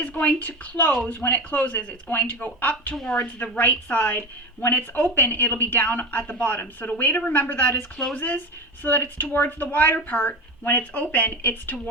going to close. When it closes, it's going to go up towards the right side. When it's open, it'll be down at the bottom. So the way to remember that is closes so that it's towards the wider part. When it's open, it's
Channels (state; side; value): normal; both; correlation 0.25